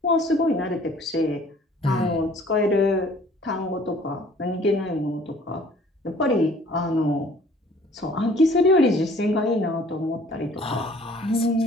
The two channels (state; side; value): normal; both; correlation 0.54